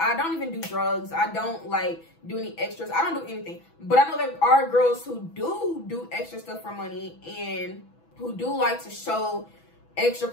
don't even do drugs. I don't like do any extras. I don't do anything. But I know there are girls who do extra stuff for money, and who do like to show extra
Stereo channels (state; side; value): late; right; 6.1 ms